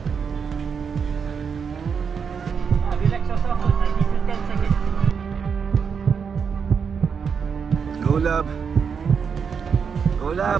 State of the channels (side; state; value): left; quieter; 6.4 dB